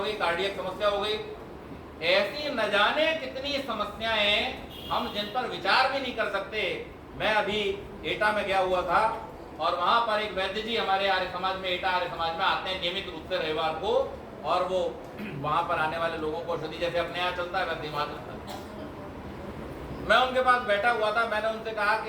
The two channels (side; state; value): both; identical; correlation 1.00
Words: गई, कार्डियक समस्या हो गई। ऐसी न जाने कितनी समस्याएं हम जिन पर विचार भी नहीं कर सकते। मैं अभी एटा में गया हुआ था और वहां पर एक वैद्य जी हमारे आर्य समाज में, एटा आर्य समाज में आते हैं नियमित रूप से रविवार को, और वो वहां पर आने वाले लोगों को औषधि जैसे अपने यहाँ चलता है वैसे वहां चलता है। मैं उनके पास बैठा हुआ था, मैंने उनसे कहा